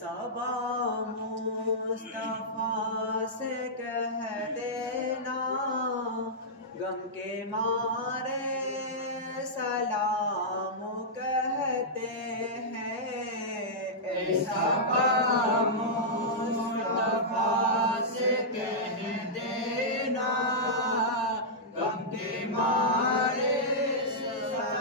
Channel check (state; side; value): normal; both; correlation -0.11